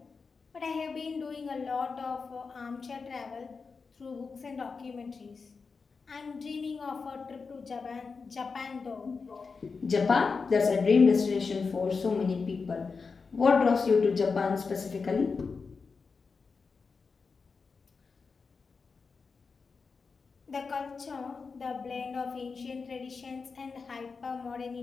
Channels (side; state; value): right; quieter; 4.8 dB